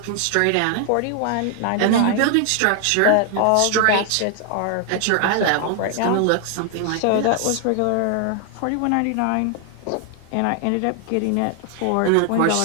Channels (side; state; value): both; different; correlation 0.00